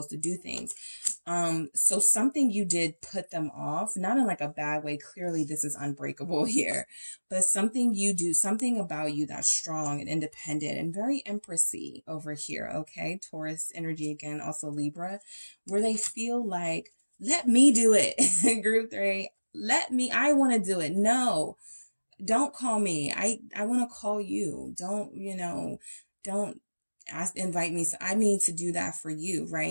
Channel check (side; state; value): both; inverted; correlation -1.00